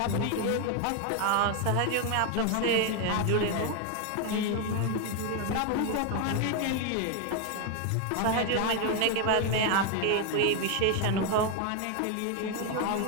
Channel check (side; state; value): both; different; correlation 0.01